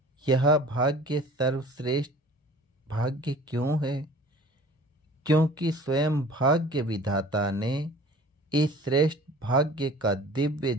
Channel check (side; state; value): both; normal; correlation 0.46